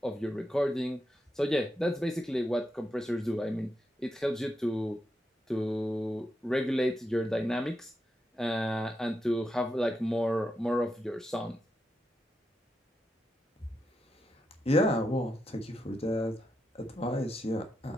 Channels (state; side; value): normal; both; correlation 0.85